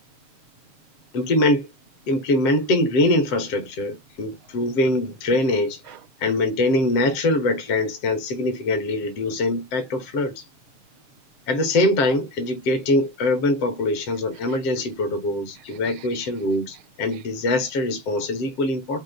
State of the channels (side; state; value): right; late; 7.6 ms